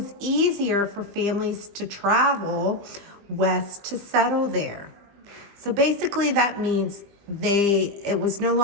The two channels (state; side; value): late; left; 20 ms